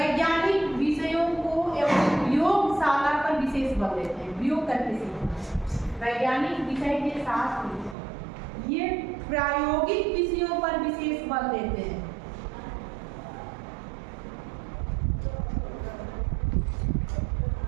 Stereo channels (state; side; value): drops out; left; at 8.0 s